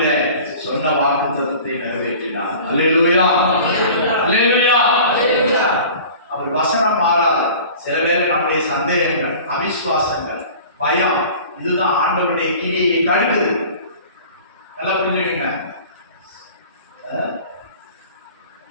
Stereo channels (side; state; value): both; inverted; correlation -0.42